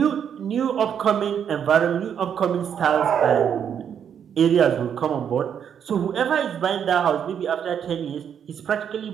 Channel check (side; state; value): left; quieter; 8.3 dB